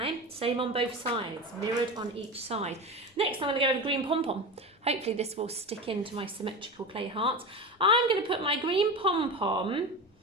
Same on both sides, mirrored on each side. Next, I'm going to go with green pom-pom. Hopefully this will stick into my symmetrical clay heart. I'm going to put my green pom-pom, I'm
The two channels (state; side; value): normal; both; correlation 0.25